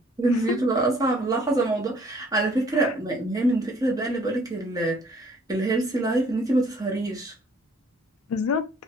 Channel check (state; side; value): normal; both; correlation 0.59